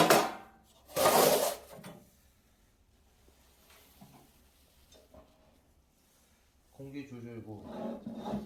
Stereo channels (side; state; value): both; identical; correlation 1.00